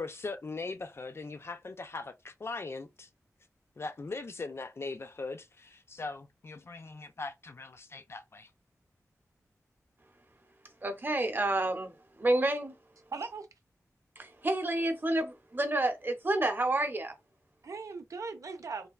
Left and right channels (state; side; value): normal; both; correlation 0.80